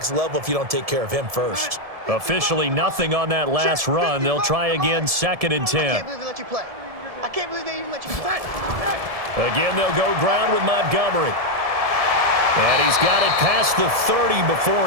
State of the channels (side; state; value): left; late; 1.7 ms